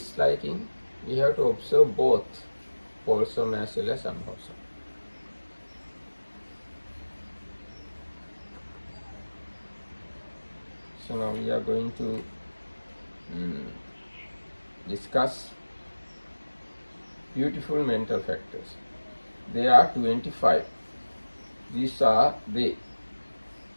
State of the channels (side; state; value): both; inverted; correlation -1.00